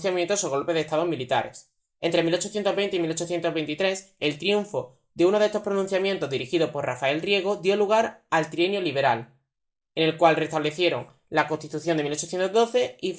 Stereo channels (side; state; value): both; identical; correlation 1.00